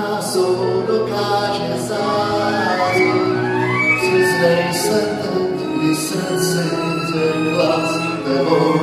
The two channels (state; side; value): identical; both; correlation 1.00